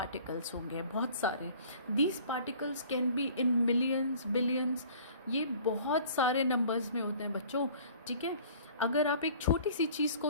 होंगे, बहुत सारे। These particles can be in millions, billions, ये बहुत सारे नंबर्स में होते हैं बच्चों, ठीक है। अगर आप एक छोटी सी चीज़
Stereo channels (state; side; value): inverted; both; correlation -0.49